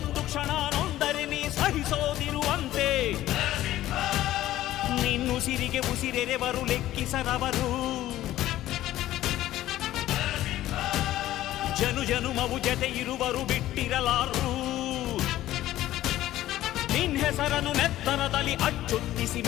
ಕ್ಷಣ ನೊಂದರೆ ನೀ ಸಹಿಸೋದಿರುವಂತೆ. ನಿನ್ನುಸಿರಿಗೆ ಉಸಿರೆರೆವರು ಲೆಕ್ಕಿಸರವರು, ಜನು ಜನುಮವು ಜತೆ ಇರುವರು ಬಿಟ್ಟಿರಲಾರು. ನಿನ್ ಹೆಸರನ್ನು ನೆತ್ತರದಲ್ಲಿ ಅಚ್ಚೊತ್ತಿಸಿ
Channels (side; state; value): right; quieter; 14.4 dB